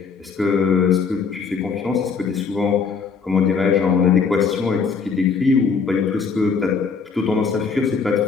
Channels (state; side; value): quieter; right; 5.5 dB